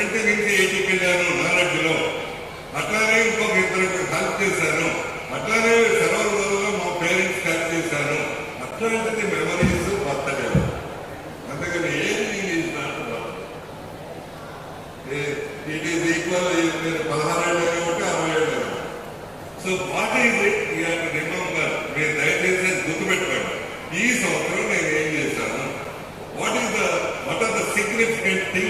నుంచి 80కి వెళ్ళాను నాలెడ్జ్లో. అట్లానే ఇంకొక ఇద్దరికి హెల్ప్ చేశాను. అట్లానే సెలవులలో మా పేరెంట్స్ హెల్ప్ చేశాను. అట్లాంటిది మెమరీస్ బర్త్డే. అందుకని ageing is not birthday. It is equal. మీరు 16 ఏళ్ళు ఒకటి 60 ఏళ్ళు. So what is it you have to remember. మీరు దయచేసి గుర్తుపెట్టుకోండి, ఈ సంవత్సరం నేను ఏం చేశాను. What are the significant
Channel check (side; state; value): both; identical; correlation 1.00